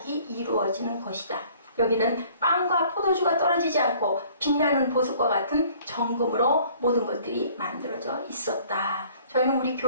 이루어지는 것이다. 여기는 빵과 포도주가 떨어지지 않고 빛나는 보석과 같은 정금으로 모든 것들이 만들어져 있었다. 저희는 우리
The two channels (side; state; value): both; inverted; correlation -0.55